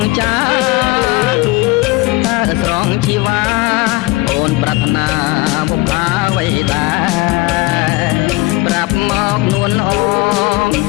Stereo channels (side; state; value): right; quieter; 21.2 dB